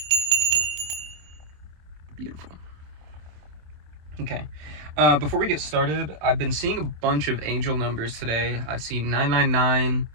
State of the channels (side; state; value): left; late; 27 ms